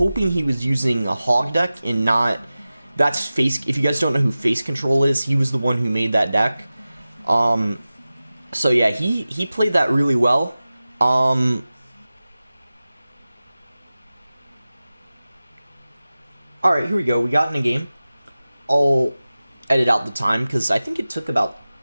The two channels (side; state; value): both; inverted; correlation -0.96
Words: he was using a Hog deck and not... That's Face... If you guys don't know who Face Control is, he was the one who made that deck. So yeah, he played that really well. Alright, here we go. We got in a game. I'll edit out the time, because I think it took about